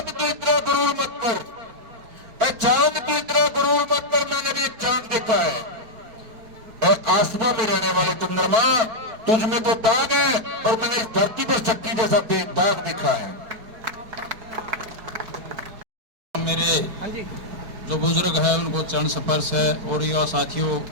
तो इतना गुरूर मत कर, चांद तो इतना गुरूर मत कर, मैंने भी चांद देखा है। आसमां में रहने वाले चंद्रमा, तुझ में तो दाग है और मैंने इस धरती पर शक्ति जैसा दाग देखा है। मेरे जो बुजुर्ग है उनको चरण स्पर्श है और युवा साथियों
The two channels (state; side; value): late; left; 4.5 ms